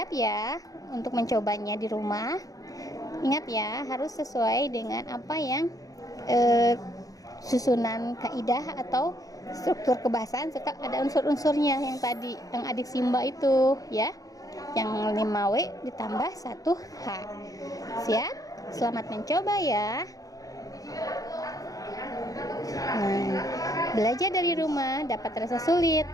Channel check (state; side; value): late; right; 0.17 ms